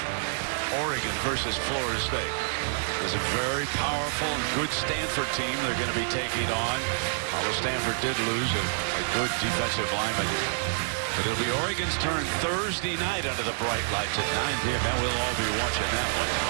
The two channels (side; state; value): left; silent; digital silence